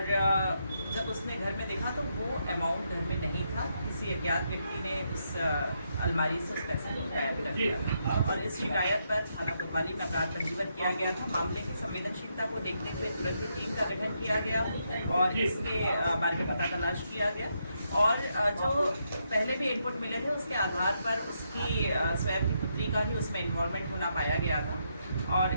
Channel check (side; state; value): both; inverted; correlation -0.79